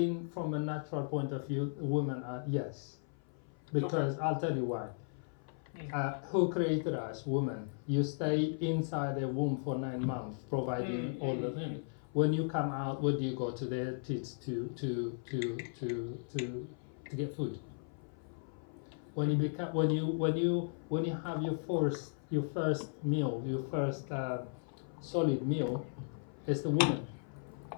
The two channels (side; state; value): right; silent; 54 dB below the other